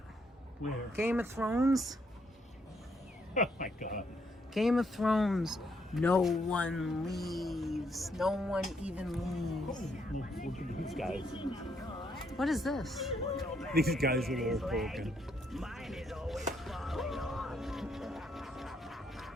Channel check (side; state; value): both; normal; correlation 0.73